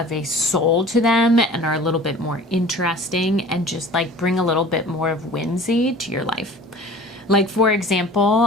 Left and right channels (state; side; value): normal; both; correlation 0.44